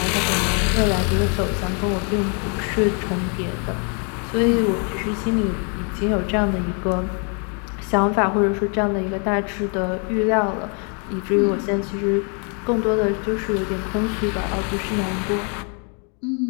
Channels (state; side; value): quieter; right; 38.1 dB